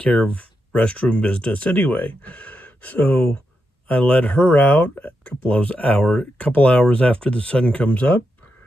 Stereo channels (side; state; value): both; normal; correlation 0.85